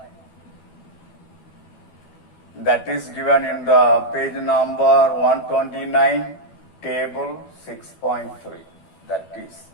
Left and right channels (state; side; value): late; right; 12 ms